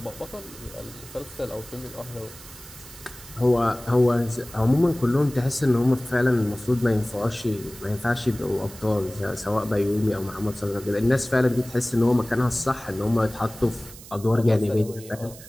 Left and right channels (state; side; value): noise; right; hiss, 17 dB below the sound